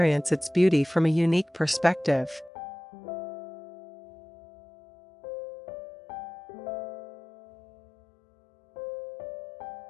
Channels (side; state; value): right; drops out; at 2.5 s